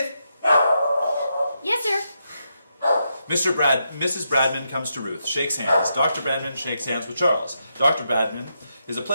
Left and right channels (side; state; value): both; inverted; correlation -0.82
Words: Yes, sir. Mrs. Bradman comes to Ruth, shakes hands. Dr. Bradman shakes hands with Charles. Dr. Bradman is a